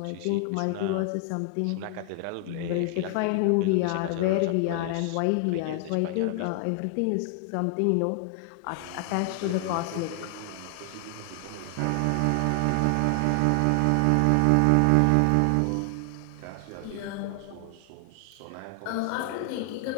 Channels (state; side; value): different; both; correlation 0.00